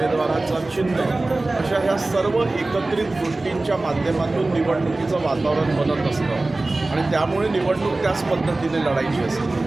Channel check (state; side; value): quieter; left; 3.0 dB